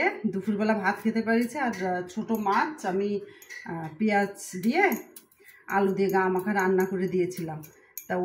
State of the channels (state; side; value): identical; both; correlation 1.00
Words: দুপুরবেলা ভাত খেতে পারিছে। আর ছোটো মাছ আমি পেঁয়াজ দিয়ে আলু দিয়ে গা মাখা রান্না করে দিয়েছিলাম। তা